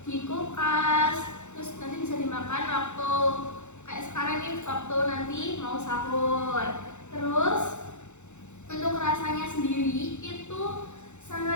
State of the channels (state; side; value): late; right; 0.83 ms